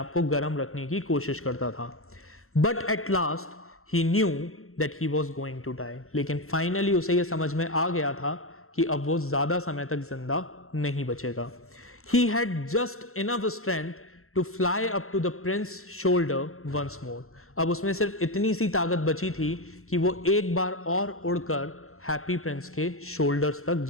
को गर्म रखने की कोशिश करता था. But at last he knew that he was going to die. लेकिन फाइनली उसे ये समझ में आ गया था कि अब वो ज्यादा समय तक जिंदा नहीं बचेगा. He had just enough strength to fly up to the prince's shoulder once more. अब उसमें सिर्फ इतनी सी ताकत बची थी कि वो एक बार और उड़कर हैप्पी प्रिंस के शोल्डर्स तक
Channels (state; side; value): late; right; 0.62 ms